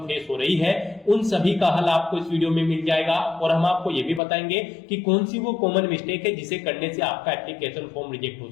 फेस हो रही है उन सभी का हल आपको इस वीडियो में मिल जाएगा। और हम आपको ये भी बताएंगे कि कौन सी वो कॉमन मिस्टेक है जिसे करने से आपका एप्लीकेशन फॉर्म रिजेक्ट हो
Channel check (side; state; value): right; drops out; at 4.2 s